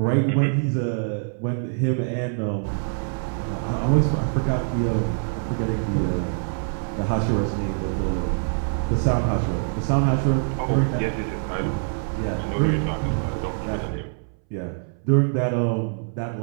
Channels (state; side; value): silent; left; 62 dB below the other